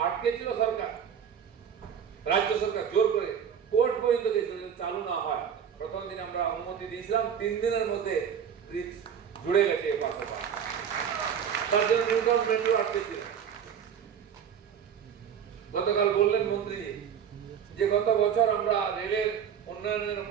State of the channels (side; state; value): left; quieter; 8.0 dB